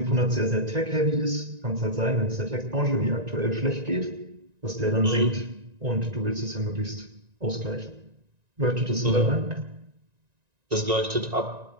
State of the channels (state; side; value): late; left; 1.9 ms